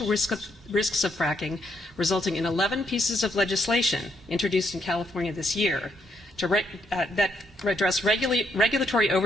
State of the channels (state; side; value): normal; both; correlation 0.75